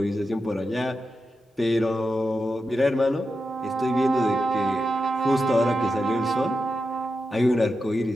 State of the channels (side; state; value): both; normal; correlation 0.89